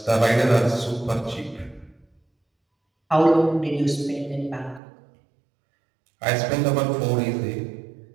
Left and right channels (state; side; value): drops out; left; at 4.8 s